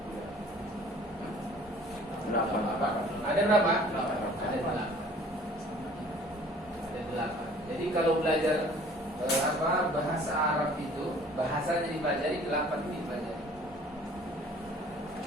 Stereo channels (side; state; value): both; normal; correlation 0.51